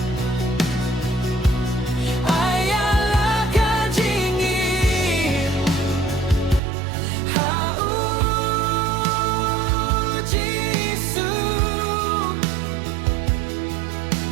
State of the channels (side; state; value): left; drops out; at 6.6 s